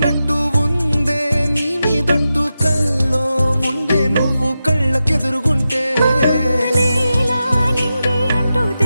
ఉందే నీ మీదొట్టు, కల్లో ఉండే నువ్వు కళ్ళకెదురుగుంటే. నీలా నింగి అంటూ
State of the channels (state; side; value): inverted; both; correlation -0.91